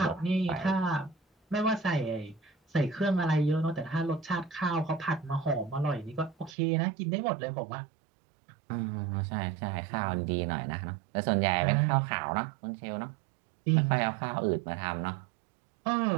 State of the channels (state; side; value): drops out; left; at 6.5 s